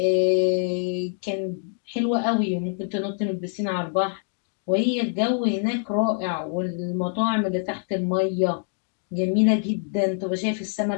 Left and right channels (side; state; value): right; silent; 59 dB below the other